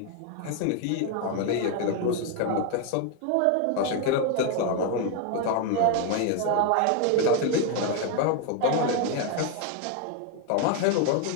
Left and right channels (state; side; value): different; both; correlation 0.01